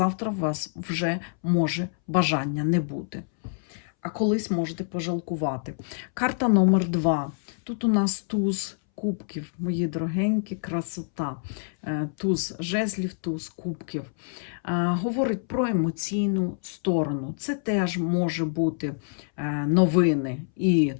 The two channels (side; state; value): right; silent; 61 dB below the other